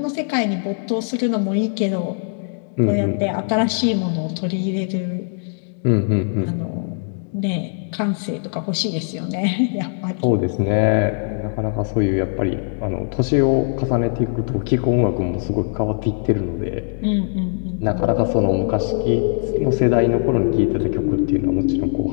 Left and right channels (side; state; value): right; silent; digital silence